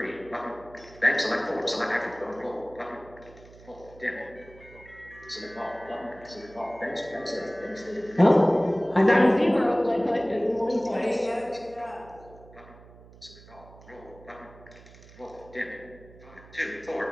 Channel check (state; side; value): noise; right; hum, 21 dB below the sound